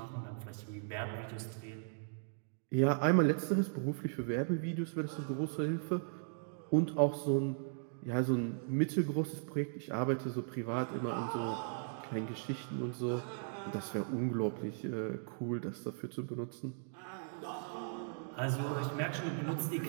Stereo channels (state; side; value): silent; left; digital silence